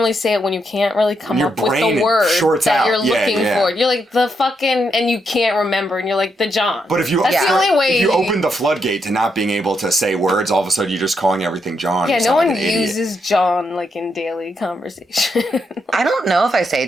say it when you can't really come up with the word that you're looking for. You're like, the fucking, and you can't remember, and you're like, the John. But if you, that's the only way. If you open the floodgate to not being able to say words, all of a sudden you're just calling everything John. Yeah, no one uses John like in daily conversation. I don't know if I say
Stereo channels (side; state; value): both; normal; correlation 0.80